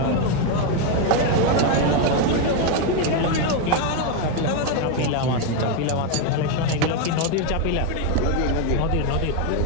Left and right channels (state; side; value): different; both; correlation 0.02